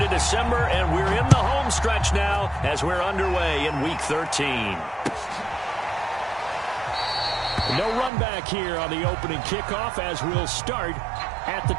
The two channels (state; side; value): drops out; left; at 8.1 s